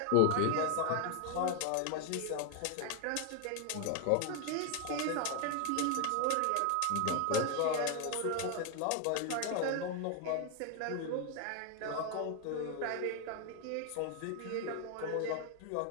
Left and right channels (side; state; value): both; different; correlation 0.01